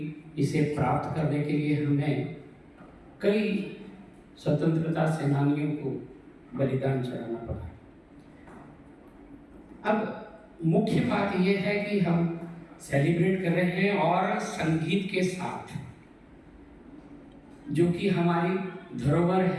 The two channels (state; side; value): identical; both; correlation 1.00